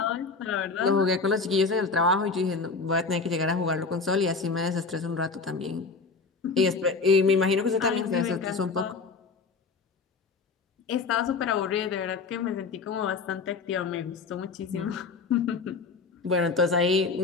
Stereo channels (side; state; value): right; quieter; 4.4 dB